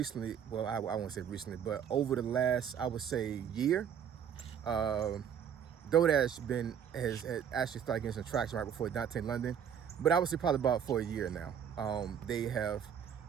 well, I won't say recently, but over the last, I would say, year, Dodash has actually started getting some traction right before Dontay London, but I would say probably about for a year now. They have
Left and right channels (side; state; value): left; quieter; 8.3 dB